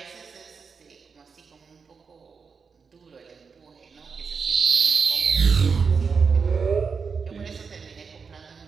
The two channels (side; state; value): left; quieter; 5.5 dB